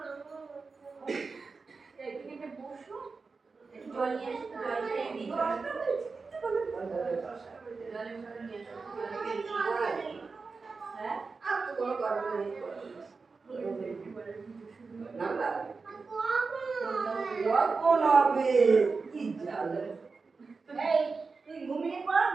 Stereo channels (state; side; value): quieter; left; 4.4 dB